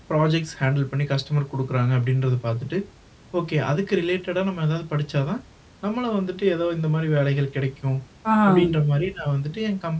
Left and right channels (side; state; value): both; identical; correlation 1.00